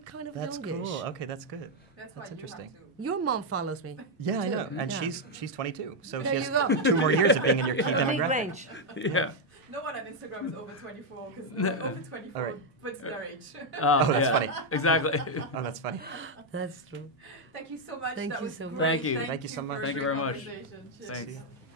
kind of That's youngish. cool. Okay, that's good. That's interesting. Your mom follows me. Yeah, I too. know. And Yeah. she's 22. So There she you has go. 2 more years of being in your key Big demographic. range. Yeah. No one on Instagram is over 24 because over 24 All right. puts their age. Oh, that's funny. Exactly. Oh, that's funny. That's true. Thank you so much. Thank that you was so much. great. Thank you. Thank you so much. for Thank you the very much. conversation. Cheers. Thanks.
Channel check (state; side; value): normal; both; correlation 0.01